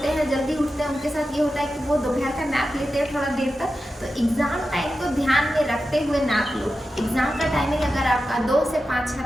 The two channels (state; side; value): normal; both; correlation 0.91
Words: हैं, जल्दी उठते हैं, उनके साथ ये होता है कि वो दोपहर का नैप लेते हैं थोड़ा देर तक। तो एग्ज़ाम टाइम को ध्यान में रखते हुए नैप लो। एग्ज़ाम का टाइमिंग अगर आपका 2 से 5 है